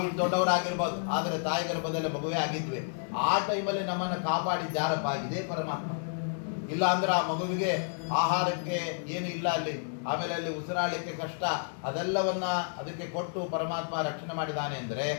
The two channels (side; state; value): right; silent; 57 dB below the other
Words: ಇಷ್ಟು ದೊಡ್ಡವರಾಗಿರ್ಬೋದು, ಆದರೆ ತಾಯಿ ಗರ್ಭದಲ್ಲಿ ಮಗುವೇ ಆಗಿದ್ವಿ. ಆ ಟೈಮಲ್ಲಿ ನಮ್ಮನ್ನು ಕಾಪಾಡಿದ್ದು ಯಾರಪ್ಪ? ಇದೇ ಪರಮಾತ್ಮ. ಇಲ್ಲ ಅಂದ್ರೆ ಆ ಮಗುವಿಗೆ ಆಹಾರಕ್ಕೆ ಏನು ಇಲ್ಲ ಅಲ್ಲಿ, ಆಮೇಲೆ ಅಲ್ಲಿ ಉಸಿರಾಡಲಿಕ್ಕೆ ಕಷ್ಟ, ಅದೆಲ್ಲವನ್ನ ಅದಕ್ಕೆ ಕೊಟ್ಟು ಪರಮಾತ್ಮ ರಕ್ಷಣೆ ಮಾಡಿದ್ದಾನೆ ಅಂದರೆ